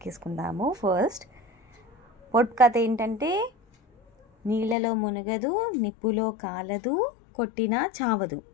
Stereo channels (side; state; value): right; drops out; at 4.8 s